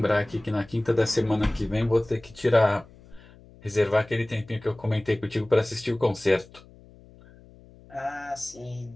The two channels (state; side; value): noise; left; hum, 24 dB below the sound